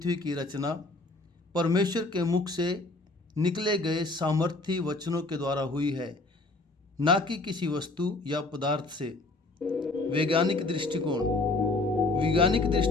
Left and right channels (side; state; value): right; quieter; 3.1 dB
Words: की रचना परमेश्वर के मुख से निकले गए सामर्थी वचनों के द्वारा हुई है, ना कि किसी वस्तु या पदार्थ से। वैज्ञानिक दृष्टिकोण